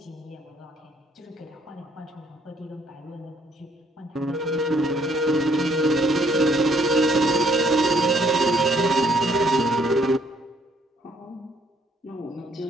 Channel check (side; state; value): both; normal; correlation 0.66